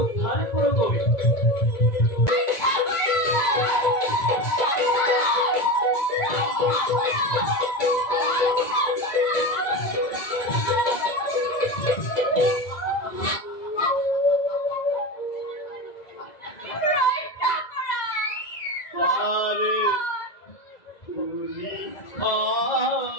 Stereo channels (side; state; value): right; late; 2.0 ms